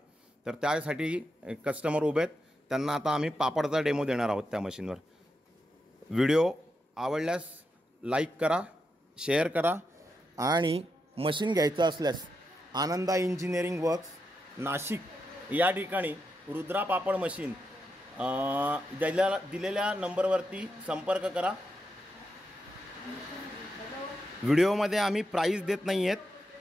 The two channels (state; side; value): normal; both; correlation 0.85